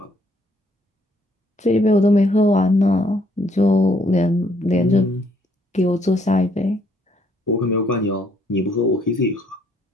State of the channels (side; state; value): both; normal; correlation 0.67